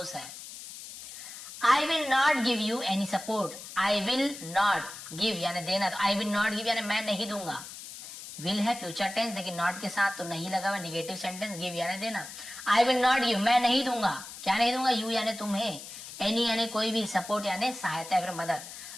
है। I will not give you any support, I will not give यानी देना, तो आई विल नॉट गिव यानी मैं नहीं दूंगा। विल है फ्यूचर टेंस, लेकिन नॉट के साथ तो नहीं लगा हुआ, निगेटिव सेंटेंस, गिव यानी देना। आई विल नॉट गिव, मैं नहीं दूंगा, क्या नहीं दूंगा, यू यानी तुम्हें, एनी यानी कोई भी, सपोर्ट यानी सहायता या फिर मदद,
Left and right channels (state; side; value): noise; left; hiss, 12 dB below the sound